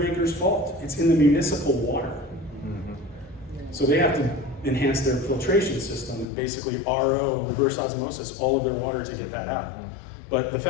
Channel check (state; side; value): drops out; right; at 6.2 s